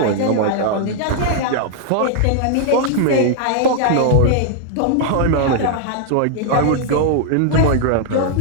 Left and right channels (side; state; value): both; different; correlation -0.01